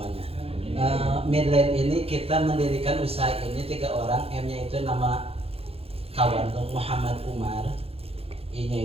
Midland ini kita mendirikan usaha ini 3 orang. M-nya itu nama kawan Muhammad Umar,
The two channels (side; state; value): left; late; 0.28 ms